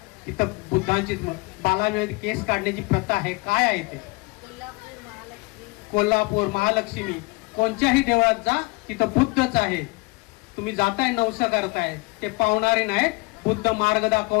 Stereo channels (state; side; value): quieter; right; 26.2 dB